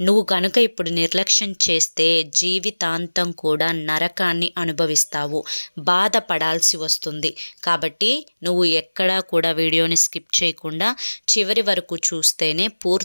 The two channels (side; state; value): both; inverted; correlation -1.00